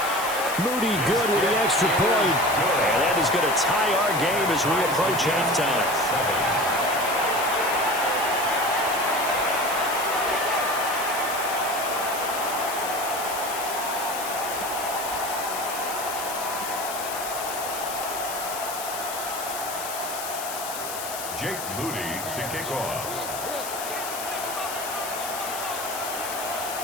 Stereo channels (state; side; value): noise; left; hiss, 7 dB below the sound